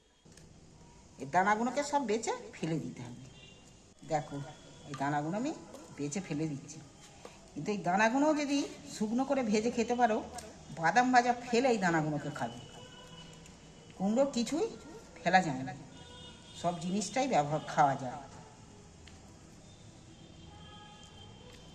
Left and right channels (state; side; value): identical; both; correlation 1.00